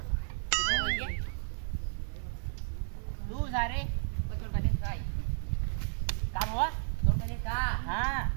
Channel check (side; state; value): left; silent; digital silence